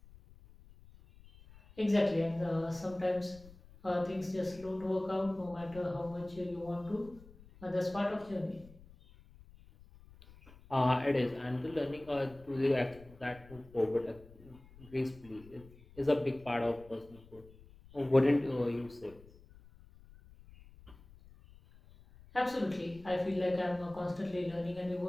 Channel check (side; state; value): left; noise; rumble, 22 dB below the sound